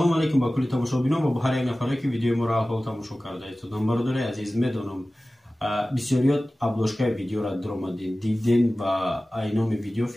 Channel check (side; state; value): both; normal; correlation 0.97